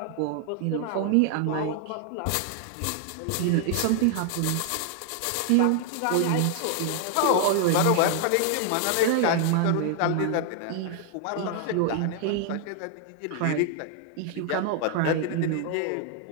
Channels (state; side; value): different; both; correlation 0.00